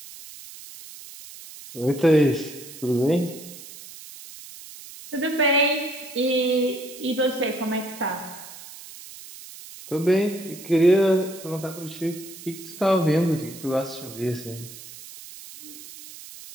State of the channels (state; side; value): noise; right; hiss, 16 dB below the sound